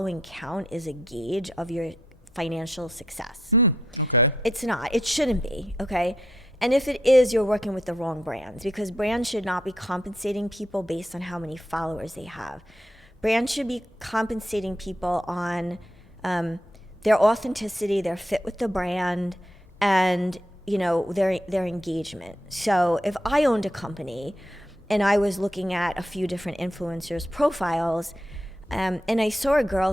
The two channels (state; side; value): normal; both; correlation 0.79